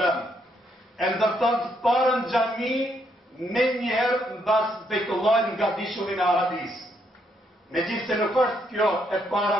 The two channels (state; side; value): normal; both; correlation 0.75